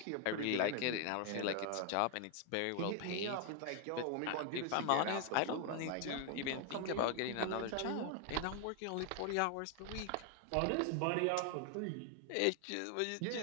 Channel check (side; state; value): both; different; correlation 0.00